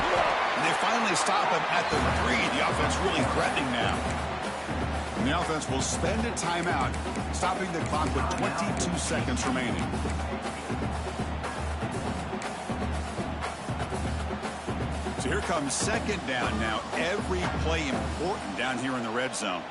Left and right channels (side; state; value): both; identical; correlation 1.00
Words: And they finally stop him at the 3. The offense really threatening now. And the offense will spend a timeout, stopping the clock with 22 seconds remaining. So here comes second down now. Every play important down here in the red zone.